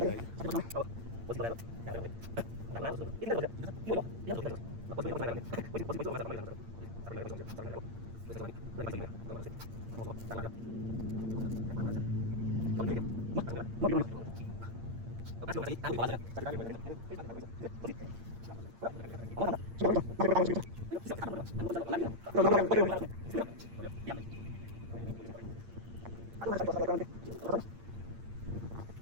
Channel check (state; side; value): late; left; 8.8 ms